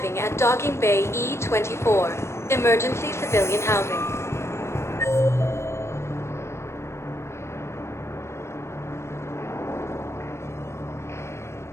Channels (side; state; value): right; late; 0.13 ms